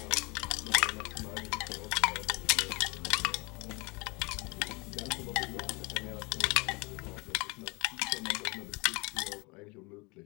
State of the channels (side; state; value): right; quieter; 27.4 dB